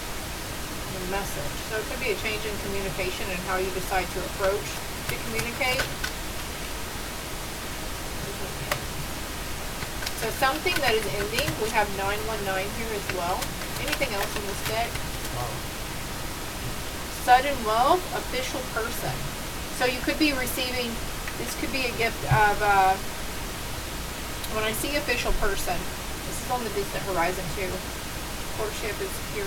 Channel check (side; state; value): both; identical; correlation 1.00